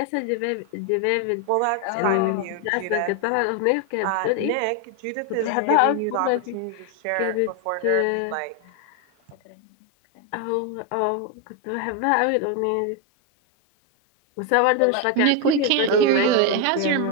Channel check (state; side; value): different; both; correlation 0.01